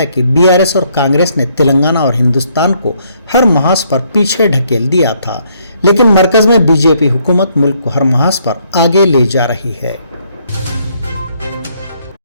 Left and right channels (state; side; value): inverted; both; correlation -0.70